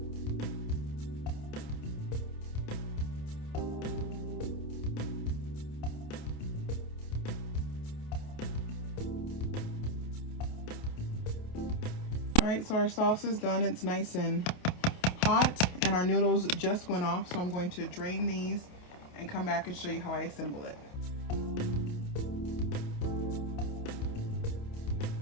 All right, so our sauce is done. It's nice and hot, and our noodles just went off, so I'm going to drain these and come back and show you how I assemble it.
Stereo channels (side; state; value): right; late; 28 ms